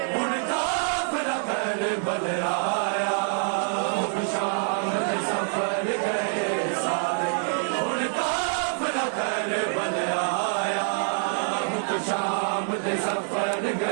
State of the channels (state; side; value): silent; left; 56 dB below the other